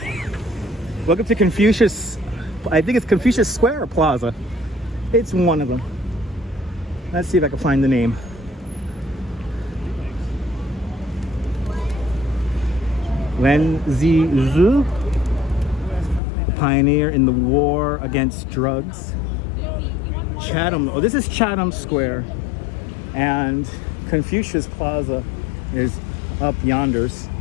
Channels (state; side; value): drops out; right; at 16.2 s